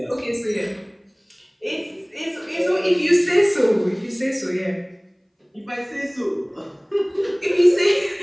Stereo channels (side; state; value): both; identical; correlation 1.00